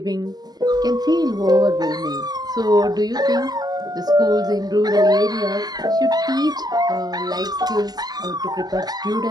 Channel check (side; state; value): left; late; 0.20 ms